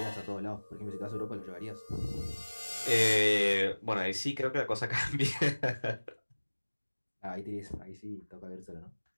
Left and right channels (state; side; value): inverted; both; correlation -1.00